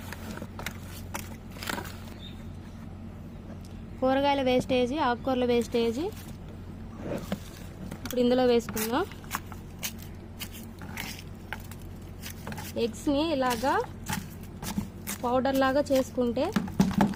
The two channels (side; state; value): both; identical; correlation 1.00